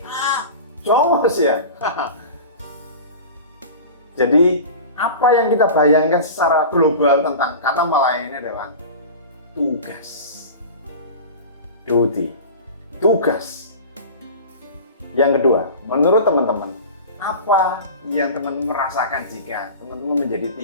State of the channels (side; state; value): both; inverted; correlation -0.34